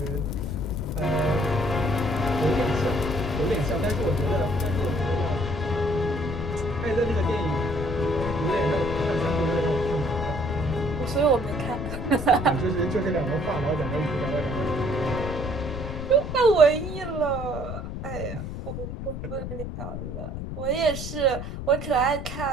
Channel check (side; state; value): left; noise; rumble, 6 dB below the sound